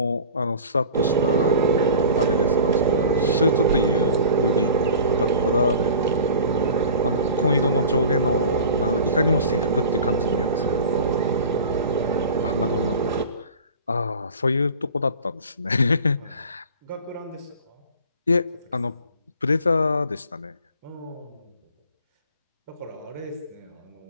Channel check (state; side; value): inverted; both; correlation -0.39